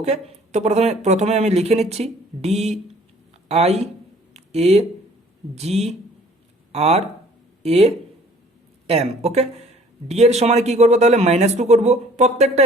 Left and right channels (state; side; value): normal; both; correlation 0.54